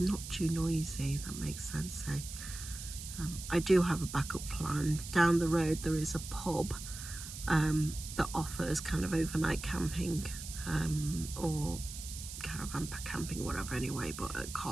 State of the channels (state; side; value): noise; right; hiss, 10 dB below the sound